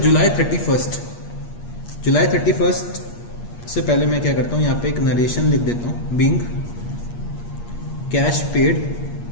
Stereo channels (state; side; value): late; right; 8.5 ms